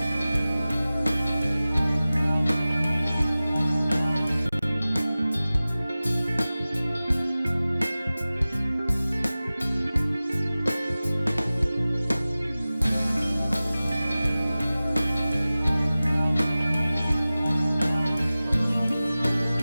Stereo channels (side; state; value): both; inverted; correlation -0.97